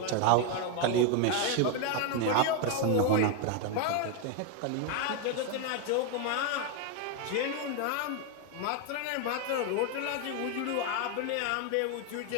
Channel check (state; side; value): different; both; correlation 0.01